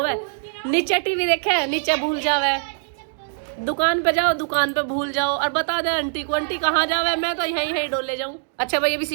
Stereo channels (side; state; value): left; silent; digital silence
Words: नीचे टीवी देखे, नीचे भूल जावे, दुकान पे जाओ, दुकान पे भूल जाओ, और बता दे आंटी को, आंटी कहाँ जावे, मैं तो यहीं यहीं डोले जाऊं। अच्छा भाई, अब